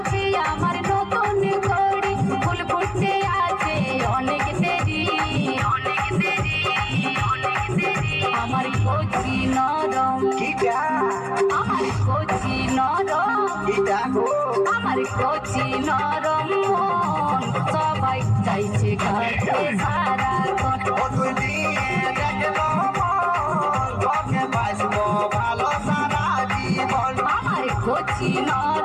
কচি নরম কিটা আমার কচি নরম কিটা গো আমার কচি নরম মন সবাই চাইছে কাছে সারাক্ষণ ও তুই দিয়ে দেখলো মন তোকে বাসবো ভালো সারা জীবন আমার কচি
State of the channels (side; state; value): both; identical; correlation 1.00